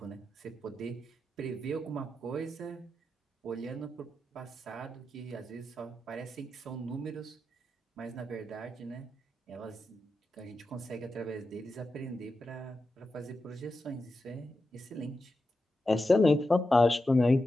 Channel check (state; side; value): normal; both; correlation 0.89